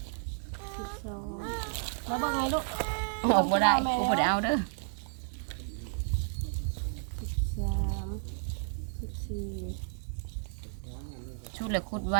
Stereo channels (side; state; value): left; silent; 56 dB below the other